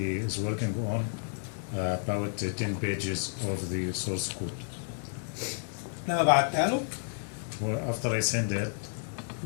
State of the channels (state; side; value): silent; right; digital silence